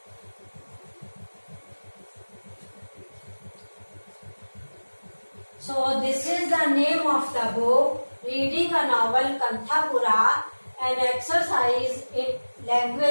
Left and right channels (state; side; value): inverted; both; correlation -1.00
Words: So this is the name of the book, Reading a Novel, Kanthapura, an exercise in